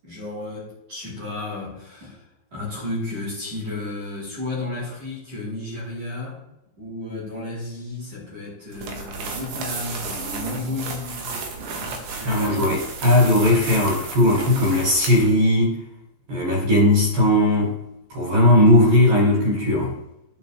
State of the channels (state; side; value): late; left; 15 ms